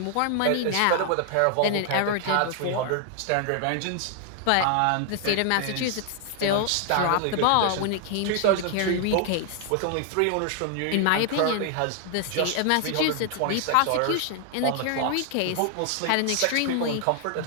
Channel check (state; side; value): different; both; correlation 0.00